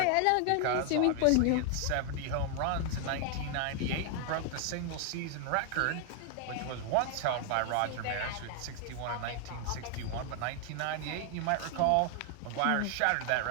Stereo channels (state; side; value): different; both; correlation 0.00